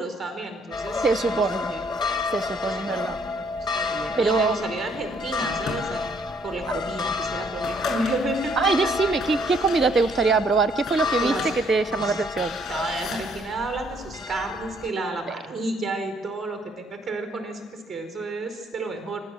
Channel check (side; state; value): both; normal; correlation 0.66